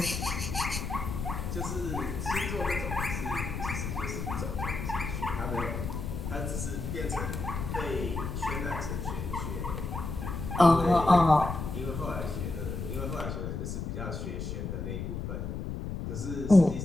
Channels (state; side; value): noise; left; rumble, 4 dB below the sound